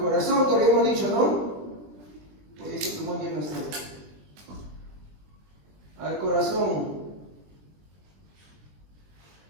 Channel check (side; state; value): left; late; 20 ms